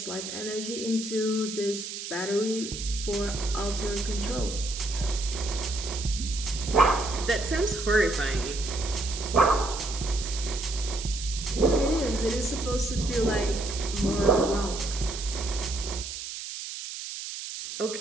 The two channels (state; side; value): noise; right; hiss, 8 dB below the sound